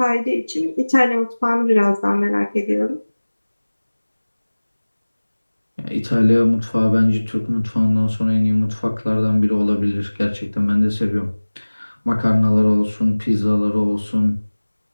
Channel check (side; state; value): both; inverted; correlation -1.00